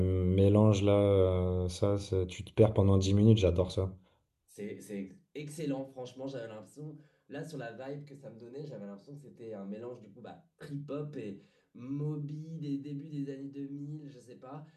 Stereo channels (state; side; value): identical; both; correlation 1.00